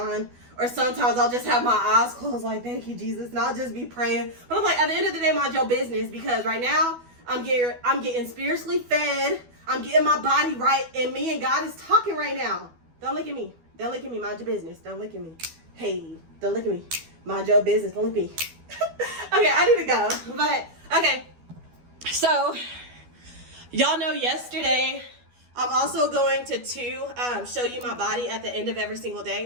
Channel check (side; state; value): left; late; 12 ms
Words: Or sometimes I'll just have my eyes closed like, thank you, Jesus. And I'll just be praying. But I'm like, at the end of the day, mind your business. Because right now, I'm getting spiritually fed. I'm getting my body right. And me and God is talking right now. Don't look at me. Don't look at me. Mind your business. Don't look at me. Hey, don't look at me. Mind your business. Don't look at me. Okay, I need to go. But, okay. So, y'all know yesterday, I'm also going to show you my body at the end of every single